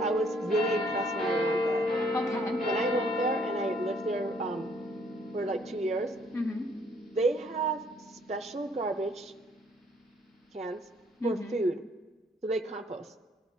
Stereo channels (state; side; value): normal; both; correlation 0.64